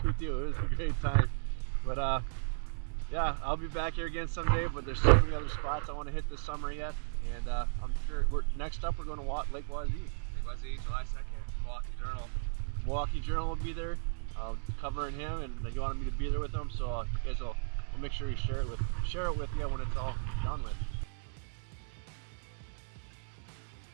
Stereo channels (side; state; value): left; silent; digital silence